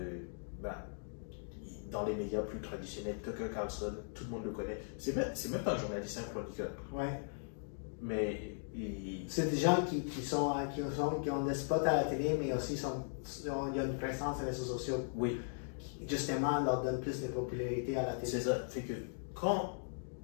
Dans les médias plus traditionnels, Tucker Carlson, tout le monde le connaît. C'est même pas un journaliste, un chroniqueur. Ouais. Mais c'est des gens qui ont des spots à la télé, mais aussi il y a une présence sur les réseaux sociaux. Oui. Qui, justement, leur donne plus de popularité à la télé. C'est ça. Fait que quand,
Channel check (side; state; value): right; silent; digital silence